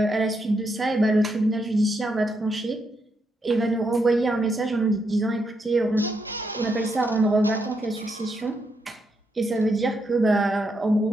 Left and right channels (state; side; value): normal; both; correlation 0.80